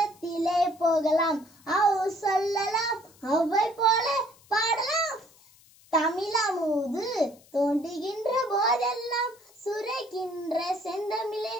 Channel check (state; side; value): noise; left; hiss, 27 dB below the sound